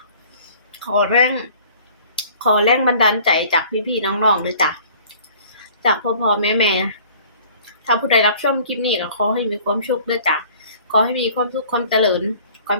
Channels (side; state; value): both; inverted; correlation -0.51